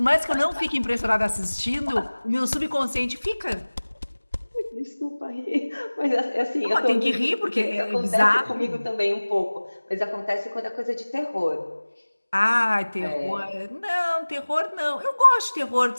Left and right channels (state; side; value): inverted; both; correlation -1.00